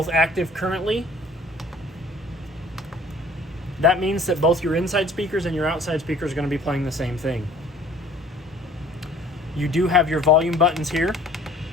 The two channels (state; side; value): normal; both; correlation 0.53